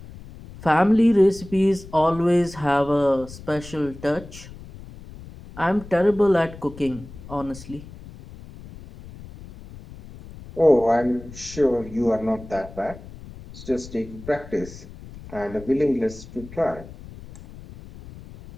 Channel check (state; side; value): noise; left; rumble, 16 dB below the sound